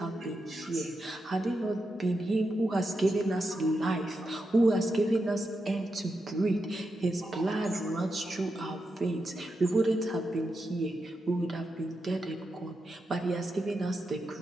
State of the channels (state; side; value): normal; both; correlation 0.87